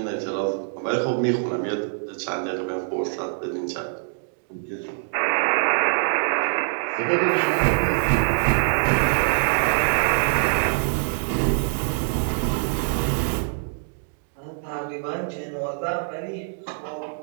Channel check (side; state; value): left; silent; 62 dB below the other